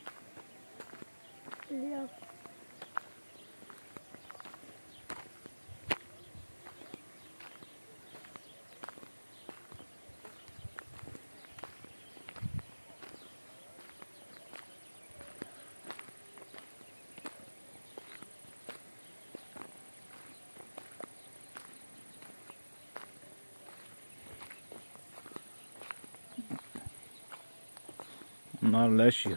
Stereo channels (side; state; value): both; inverted; correlation -1.00